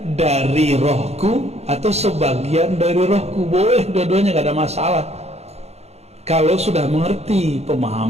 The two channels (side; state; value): left; late; 0.31 ms